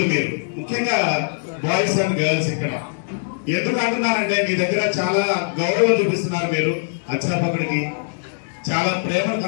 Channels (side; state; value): right; silent; digital silence